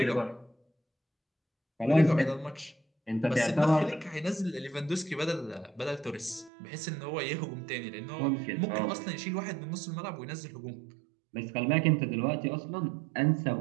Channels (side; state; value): left; drops out; at 6.5 s